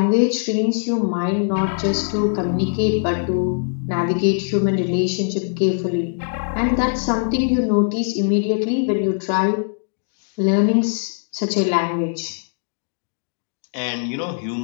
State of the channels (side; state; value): right; silent; digital silence